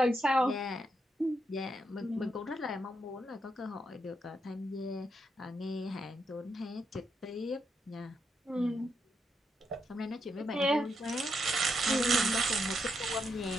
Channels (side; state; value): both; normal; correlation 0.81